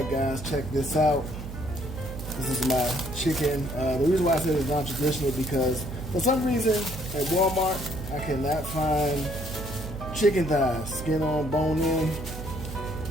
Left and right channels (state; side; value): noise; right; hum, 9 dB below the sound